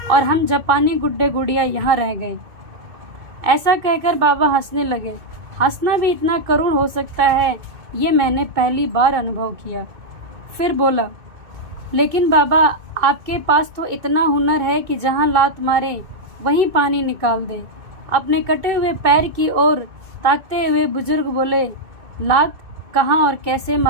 और हम जापानी गुड्डे गुड़िया यहाँ रह गए। ऐसा कहकर बाबा हंसने लगे। हंसना भी इतना करुण हो सकता है, ये मैंने पहली बार अनुभव किया। फिर बोला, लेकिन बाबा आपके पास तो इतना हुनर है कि जहाँ लात मारे वहीं पानी निकाल दे। अपने कटे हुए पैर की ओर ताकते हुए बुजुर्ग बोले, लात कहाँ और कैसे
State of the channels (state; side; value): late; left; 2.4 ms